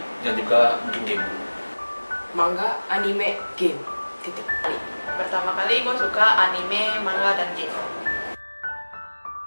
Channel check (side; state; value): both; inverted; correlation -1.00